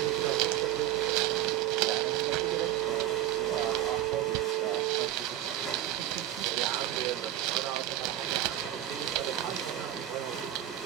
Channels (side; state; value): left; quieter; 12.5 dB